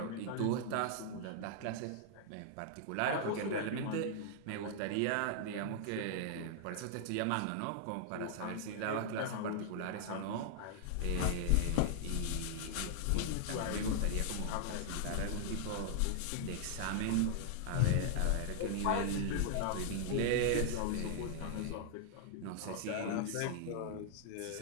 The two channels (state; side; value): different; both; correlation -0.01